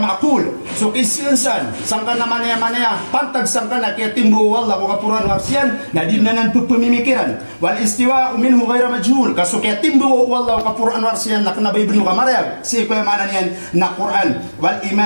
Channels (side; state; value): both; inverted; correlation -1.00